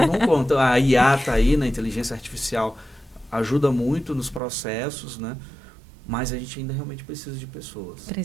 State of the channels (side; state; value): left; drops out; at 4.4 s